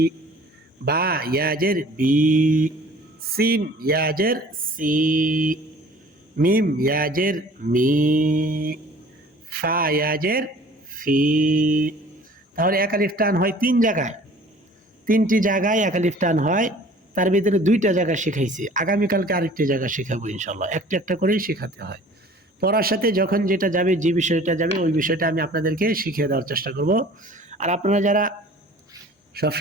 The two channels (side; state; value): both; normal; correlation 0.49